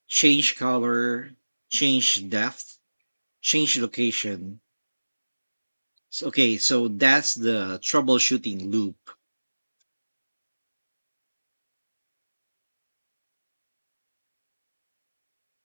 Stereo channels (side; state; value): both; inverted; correlation -1.00